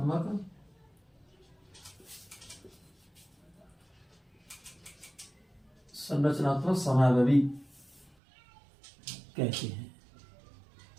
समावेशी कहते हैं।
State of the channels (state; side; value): drops out; left; at 8.2 s